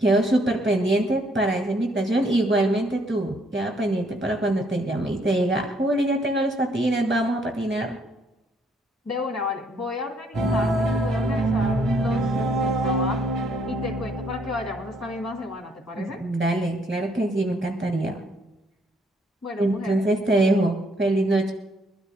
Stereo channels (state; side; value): normal; both; correlation 0.68